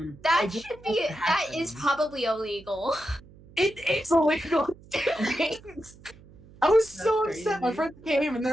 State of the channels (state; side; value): noise; right; hum, 23 dB below the sound